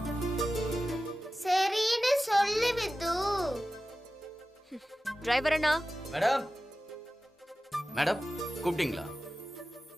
சரின்னு சொல்லு with. Driver Anna. Madam madam கூப்பிட்டீங்களா?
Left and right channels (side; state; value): both; normal; correlation 0.95